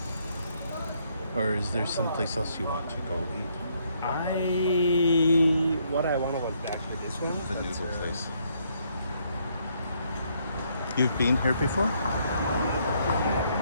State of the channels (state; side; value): inverted; both; correlation -0.71